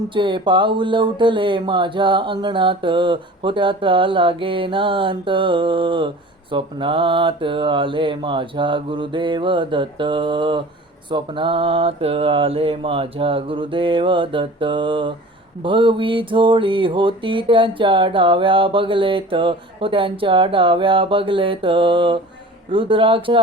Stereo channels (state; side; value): normal; both; correlation 0.41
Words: पाऊल उठले माझ्या अंगणात, होत्याचा लागेनांत. स्वप्नात आले माझ्या गुरुदेव दत्त. स्वप्नात आले माझ्या गुरुदेव दत्त. भगवी झोळी होती त्यांच्या डाव्या बगलेत, त्यांच्या डाव्या बगलेत.